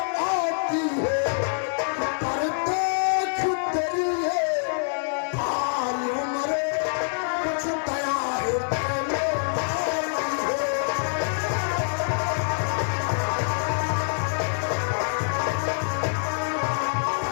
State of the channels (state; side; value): silent; right; digital silence